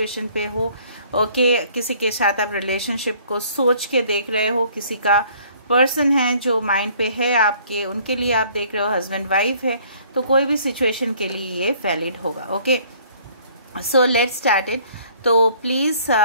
पे हो। ओके, किसी के साथ आप रिलेशनशिप को सोच के देख रहे हो, किसी का पर्सन है जो माइंड पे है आपके, उनके लिए आप देख रहे हो, हस्बैंड वाइफ है, तो कोई भी सिचुएशन के लिए ये वैलिड होगा। Okay, so let's start it. तो प्लीज़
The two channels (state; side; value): inverted; both; correlation -0.57